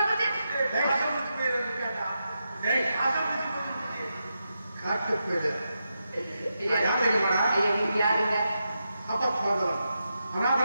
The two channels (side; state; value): both; inverted; correlation -0.86